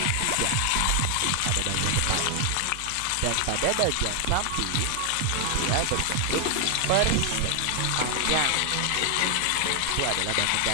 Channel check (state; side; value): different; both; correlation 0.00